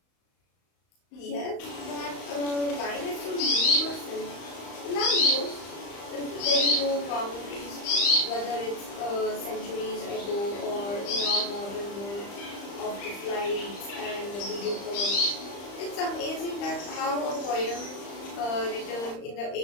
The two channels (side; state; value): right; late; 35 ms